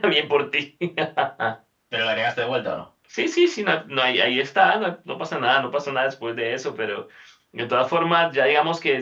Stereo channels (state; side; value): identical; both; correlation 1.00